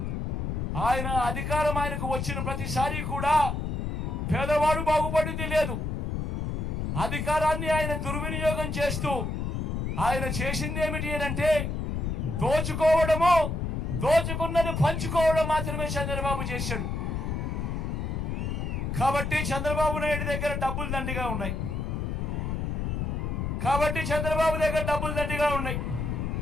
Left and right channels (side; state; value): left; noise; rumble, 2 dB below the sound